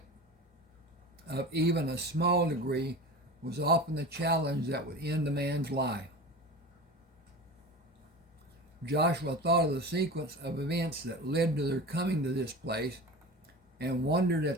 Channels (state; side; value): normal; both; correlation 0.32